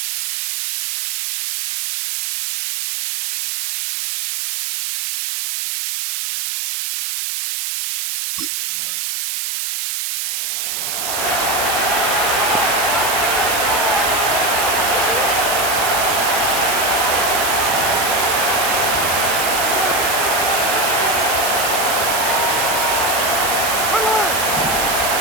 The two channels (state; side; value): noise; right; hiss, 2 dB below the sound